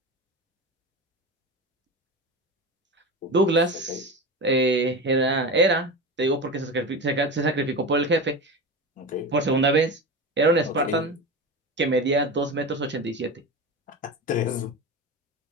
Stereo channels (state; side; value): normal; both; correlation 0.25